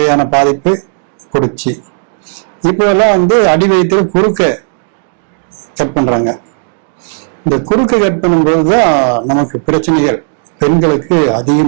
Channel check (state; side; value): silent; left; digital silence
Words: பாதிப்பு கொடுச்சு. இப்போ எல்லாம் அடி வயிற்றுல குறுக்க கட் பண்றாங்க. இந்த குறுக்க கட் பண்ணும்போதுதான் நமக்கு பிரச்சனைகள் பெண்களுக்கு